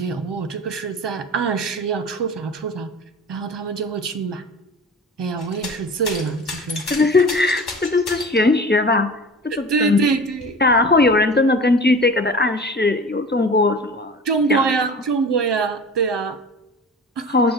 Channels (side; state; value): both; normal; correlation 0.37